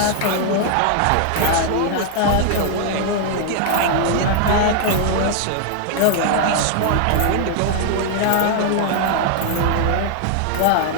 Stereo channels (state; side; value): different; both; correlation 0.00